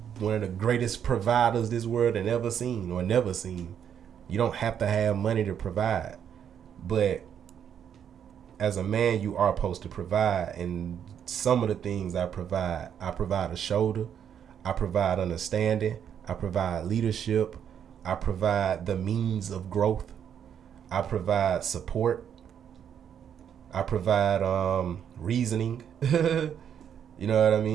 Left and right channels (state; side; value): quieter; left; 8.7 dB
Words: one of the greatest providers this world had ever seen or never seen. You don't have to have money to provide. But as a man, you are supposed to provide. And some of the things I provide a shoulder. I provide understanding. I provide leadership. I provide the means of growth. I provide support. I provide reasoning. You know what I